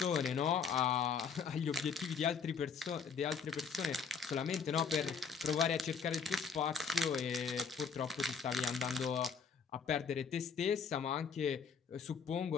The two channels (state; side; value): quieter; right; 5.9 dB